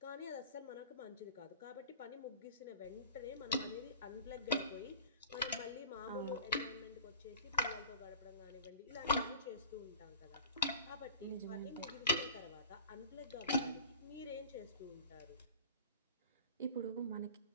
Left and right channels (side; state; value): both; inverted; correlation -0.40